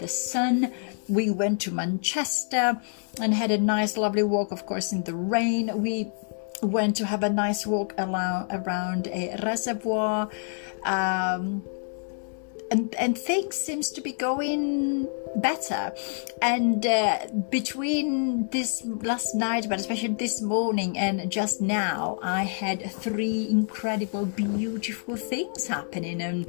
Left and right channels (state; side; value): silent; right; 58 dB below the other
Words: sun. We went to Manchester and had a nice lovely walk, of course, in the rain. We went to have a nice walk around a reservoir, and things seems to be going better. And between this last night, but especially this morning and just now, I had 3 incredible, beautiful things happening,